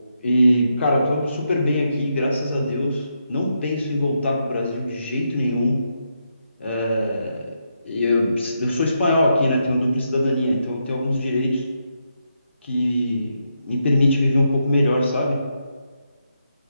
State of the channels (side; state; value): both; inverted; correlation -0.82